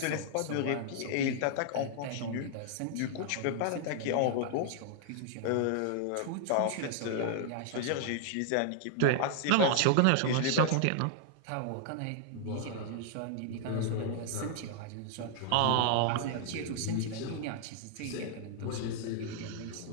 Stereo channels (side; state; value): both; different; correlation 0.00